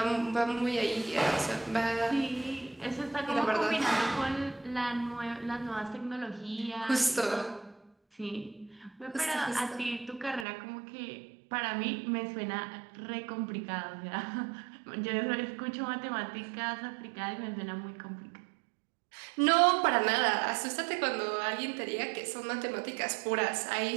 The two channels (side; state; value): left; drops out; at 10.5 s